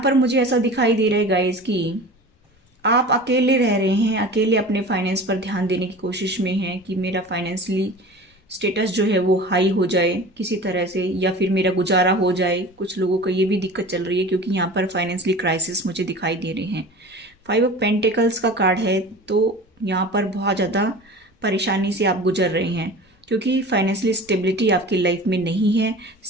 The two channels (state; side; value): normal; both; correlation 0.37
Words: मुझे ऐसा दिखाई दे रहा है गाइस कि आप अकेले रह रहे हैं, अकेले अपने फाइनेंस पर ध्यान देने की कोशिश में हैं कि मेरा फाइनेंशियली स्टेटस जो है वो हाई हो जाए किसी तरह से, या फिर मेरा गुजारा हो जाए। कुछ लोगों को ये भी दिक्कत चल रही है क्योंकि यहाँ पर फाइनेंशियली क्राइसिस मुझे दिखाई दे रहे हैं। 5 ऑफ पेंटिकल्स का कार्ड है, तो यहाँ पर बहुत ज़्यादा परेशानी से आप गुजर रहे हैं क्योंकि फाइनेंशियली स्टेबिलिटी आपकी लाइफ में नहीं है।